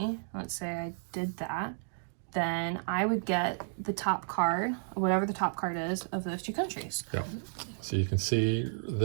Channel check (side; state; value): left; silent; digital silence